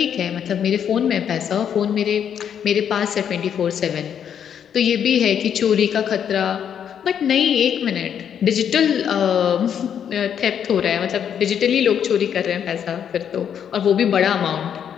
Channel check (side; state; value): right; quieter; 8.6 dB